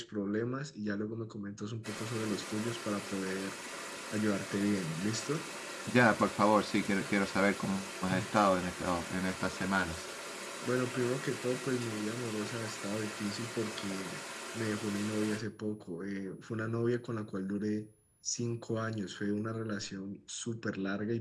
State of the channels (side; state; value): both; identical; correlation 1.00